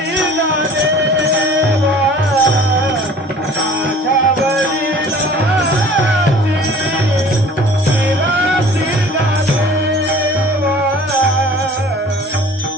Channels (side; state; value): both; normal; correlation 0.47